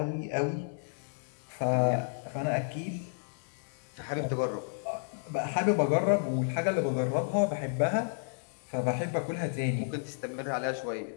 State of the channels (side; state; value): right; silent; 57 dB below the other